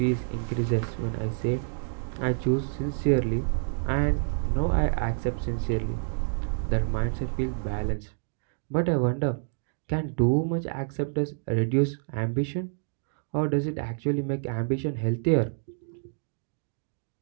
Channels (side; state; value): left; silent; digital silence